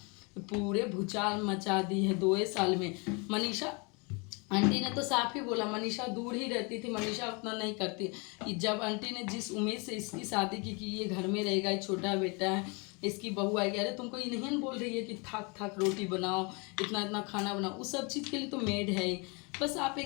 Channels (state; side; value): quieter; right; 31.1 dB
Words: पूरे भूचाल मचा दी है 2 साल में। मनीषा आंटी ने तो साफ ही बोला, मनीषा दूर ही रहती थी, मनीषा उतना नहीं करती। जब आंटी ने जिस उम्मीद से इसकी शादी की कि ये घर में रहेगा, ये छोटा बेटा है, इसकी बहू आएगी, अरे तुमको ये नहीं बोल रही है कि थक रोटी बनाओ, इतना खाना बनाओ, उस सब चीज़ के लिए तो मेड है ही। बस आप